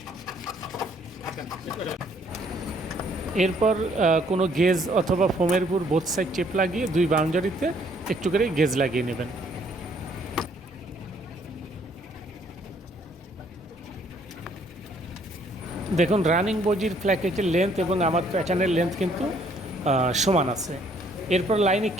এরপর কোনো গেজ অথবা ফোমের উপর বোথ সাইড টেপ লাগিয়ে দুই বাউন্ডারিতে একটু করে গেজ লাগিয়ে নেবেন। দেখুন রানিং বডির প্ল্যাকেটের লেন্থ এবং আমার প্যাটার্নের লেন্থ কিন্তু সমান আছে। এরপর লাইনে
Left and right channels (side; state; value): both; normal; correlation 0.64